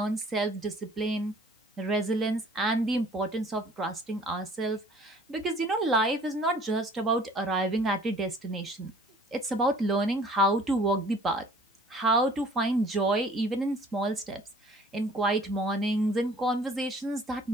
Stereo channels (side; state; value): both; normal; correlation 0.52